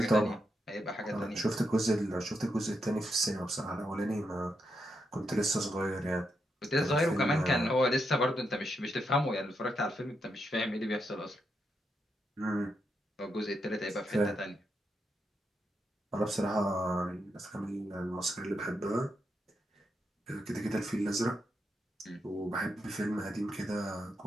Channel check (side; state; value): both; normal; correlation 0.82